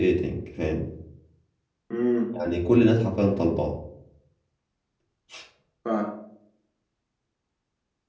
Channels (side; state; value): both; identical; correlation 1.00